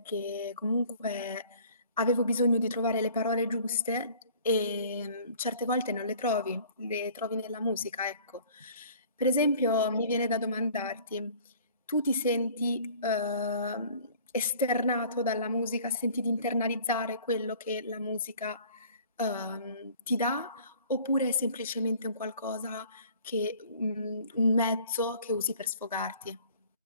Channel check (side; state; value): both; inverted; correlation -0.50